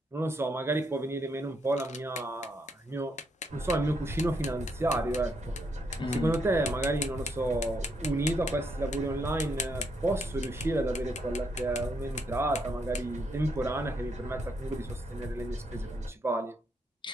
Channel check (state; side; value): normal; both; correlation 0.76